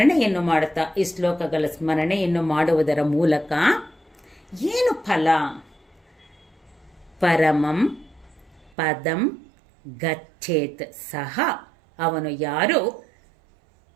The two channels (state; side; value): drops out; left; at 8.7 s